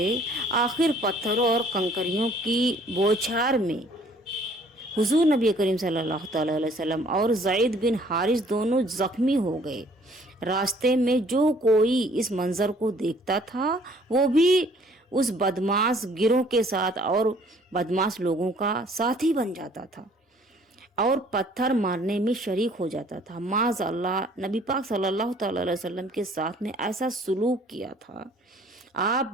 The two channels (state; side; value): normal; both; correlation 0.58